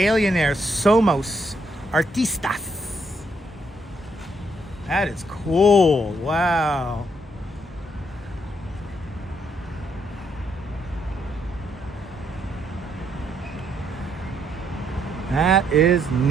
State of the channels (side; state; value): both; normal; correlation 0.73